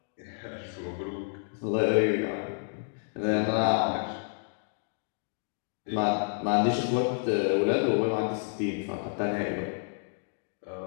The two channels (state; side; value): silent; right; digital silence